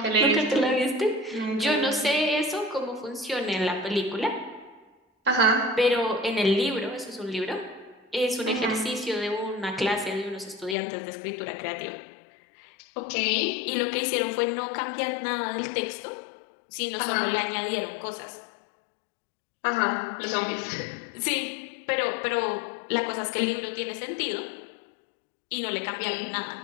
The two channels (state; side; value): drops out; right; at 10.8 s